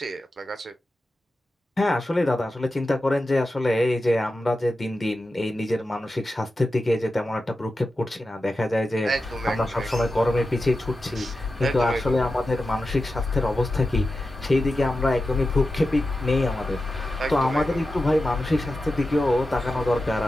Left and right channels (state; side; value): normal; both; correlation 0.91